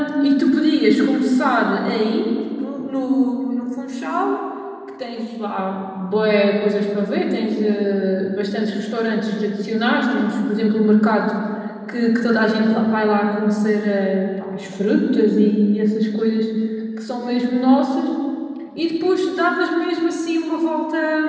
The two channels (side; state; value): both; identical; correlation 1.00